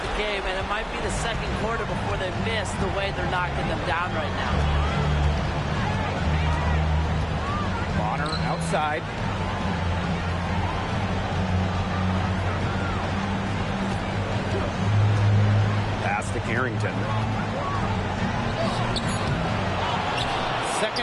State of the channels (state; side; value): identical; both; correlation 1.00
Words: the game, and it might be the second quarter before they miss the way they're knocking them down right now. Bonner outside. Pass to Carrington.